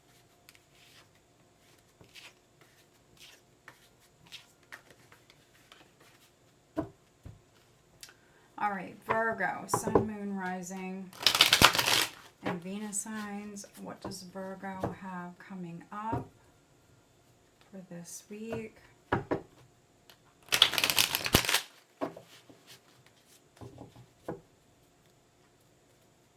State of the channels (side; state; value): both; identical; correlation 1.00